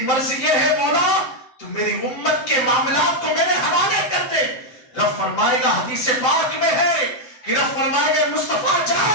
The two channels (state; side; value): late; right; 7.6 ms